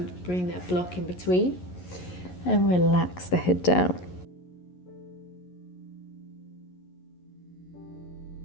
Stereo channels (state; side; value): late; right; 11 ms